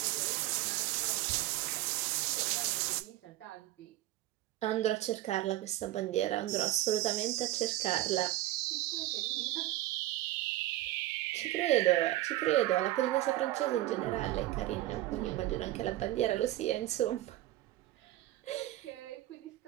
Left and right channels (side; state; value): left; quieter; 15.5 dB